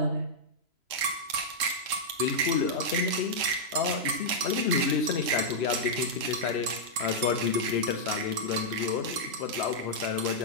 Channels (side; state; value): left; late; 3.7 ms